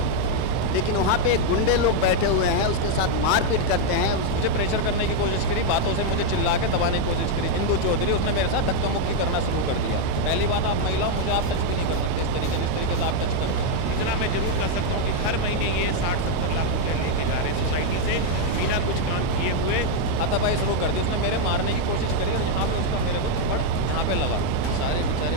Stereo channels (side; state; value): both; different; correlation 0.00